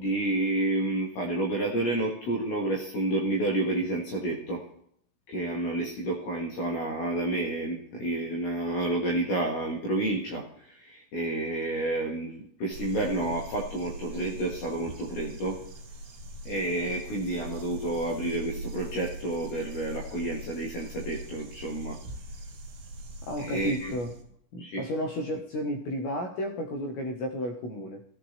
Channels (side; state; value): right; late; 16 ms